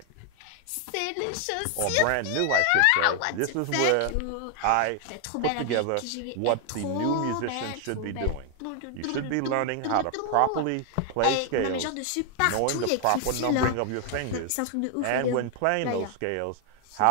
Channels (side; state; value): both; different; correlation 0.00